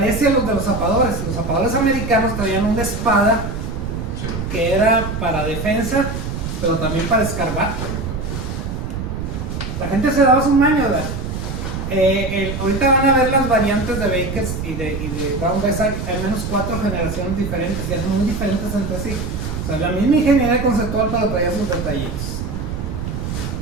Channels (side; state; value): right; noise; rumble, 5 dB below the sound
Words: a los de los zapadores. Los zapadores americanos traían una espada que era para defensa, pero también para escarbar. La gente se daba su maño, ¿verdad? Ahorita van a ver las variantes de Bakers y de Brown Bess. Hay al menos 4 generaciones diferentes, que son muy diferentes entre sí. O sea, la misma ingeniería conceptual, pero traía sus detallitos.